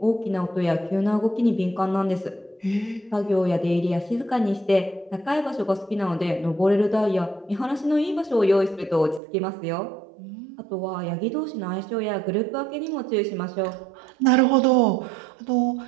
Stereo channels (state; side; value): drops out; left; at 9.2 s